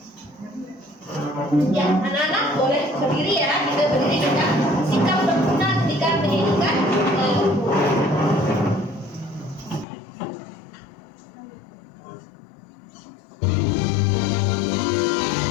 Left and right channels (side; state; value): right; drops out; at 9.9 s